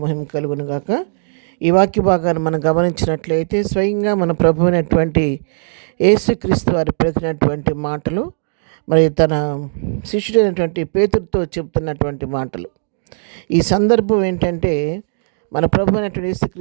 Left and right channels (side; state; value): left; silent; digital silence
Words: మహిమ కలుగును గాక. ఈ వాక్య భాగాన్ని మనం గమనించినట్లయితే స్వయంగా మన ప్రభు అయినటువంటి యేసుక్రీస్తు వారి పలికినటువంటి మాటలు, మరి తన శిష్యుడైనటువంటి పేతురుతో చెప్తున్నటువంటి మాటలు. ఈ సందర్భం ఏంటంటే, మన ప్రభు అయినటువంటి